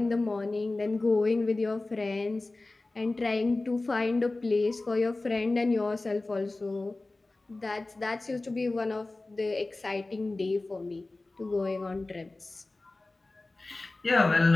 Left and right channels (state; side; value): quieter; right; 3.1 dB